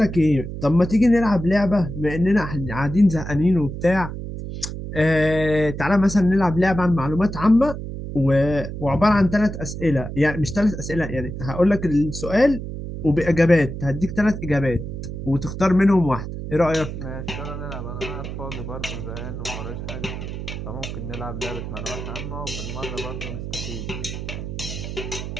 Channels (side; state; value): right; noise; hum, 7 dB below the sound